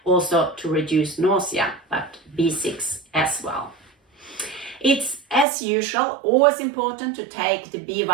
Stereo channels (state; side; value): drops out; left; at 5.5 s